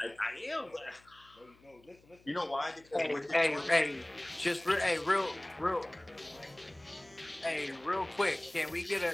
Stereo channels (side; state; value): left; noise; hum, 28 dB below the sound